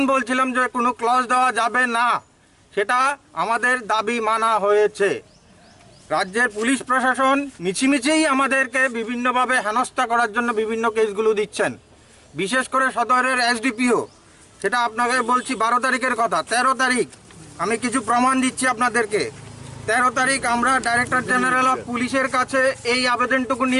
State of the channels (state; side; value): identical; both; correlation 1.00